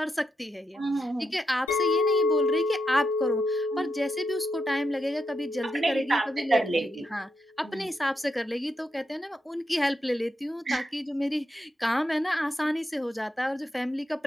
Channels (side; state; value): both; normal; correlation 0.83